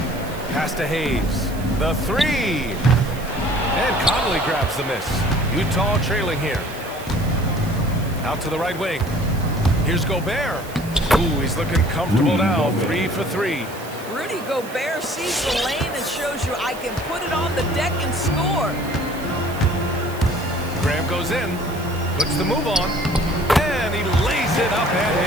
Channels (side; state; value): right; noise; hiss, 17 dB below the sound